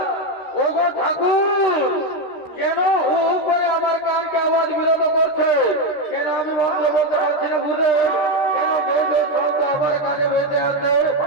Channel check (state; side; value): late; right; 13 ms